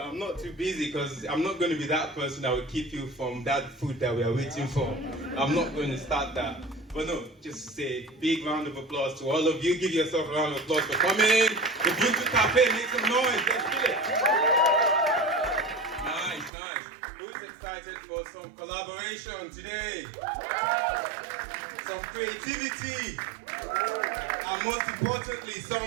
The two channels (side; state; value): left; drops out; at 16.5 s